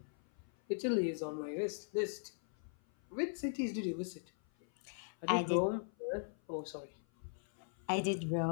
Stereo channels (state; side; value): silent; right; 52 dB below the other